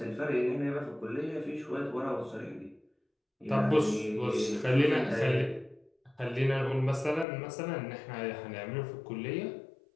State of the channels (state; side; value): drops out; right; at 7.2 s